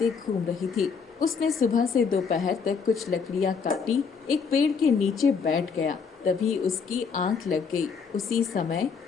घूम रही थी। उसने सुबह से दोपहर तक कुछ लकड़ियां काटी, एक पेड़ के नीचे बैठ गया। तभी उसकी आंख लग गई। उसी समय,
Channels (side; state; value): right; quieter; 5.7 dB